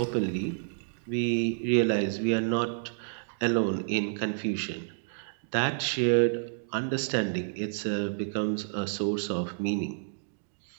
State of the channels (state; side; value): silent; left; digital silence